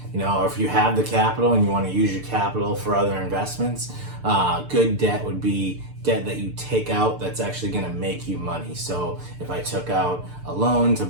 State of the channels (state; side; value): late; left; 6.7 ms